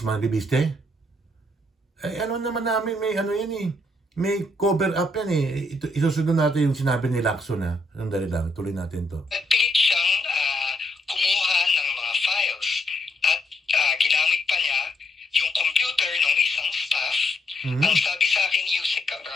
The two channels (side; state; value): both; normal; correlation 0.75